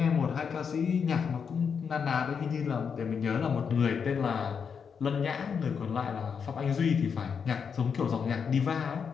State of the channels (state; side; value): quieter; right; 6.5 dB